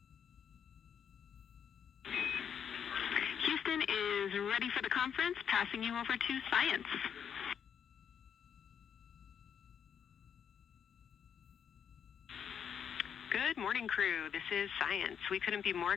Houston is ready for the conference, passing you over to Science. Good morning, crew. This is Science. We couldn't be more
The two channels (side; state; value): right; quieter; 8.0 dB